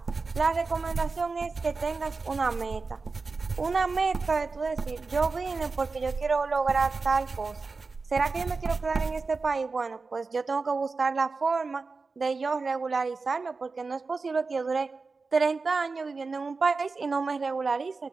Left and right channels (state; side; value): quieter; left; 4.2 dB